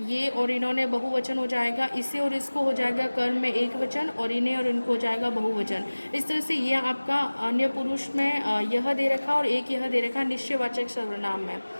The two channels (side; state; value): both; inverted; correlation -1.00